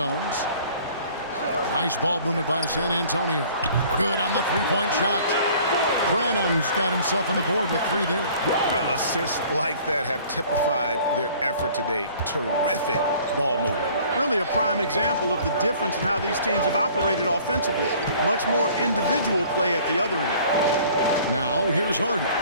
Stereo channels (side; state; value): both; inverted; correlation -0.51